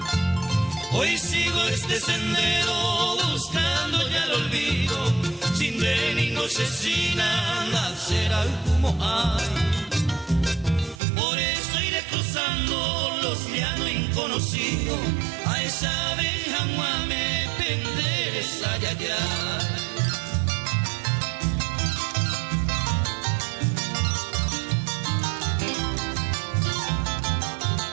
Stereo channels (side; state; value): left; drops out; at 11.0 s